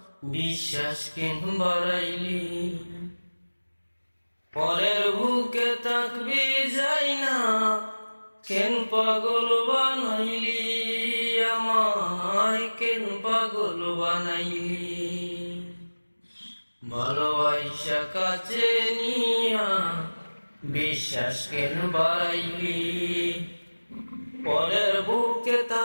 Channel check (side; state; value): both; inverted; correlation -1.00